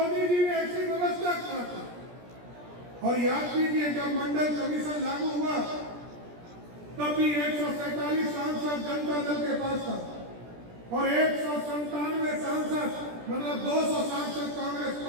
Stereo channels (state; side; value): late; left; 17 ms